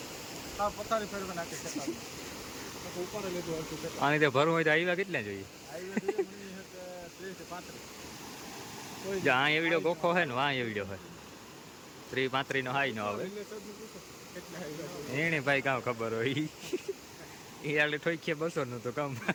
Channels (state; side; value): identical; both; correlation 1.00